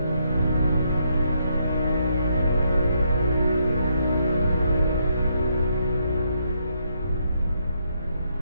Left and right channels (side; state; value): both; inverted; correlation -0.75